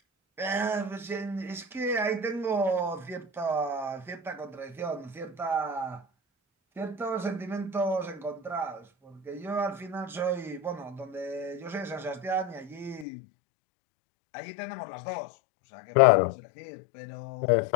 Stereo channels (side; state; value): right; drops out; at 13.1 s